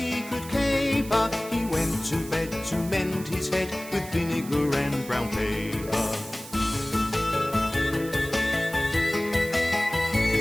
could caper. He went to bed to mend his head with vinegar and brown paper.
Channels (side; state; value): right; noise; hiss, 15 dB below the sound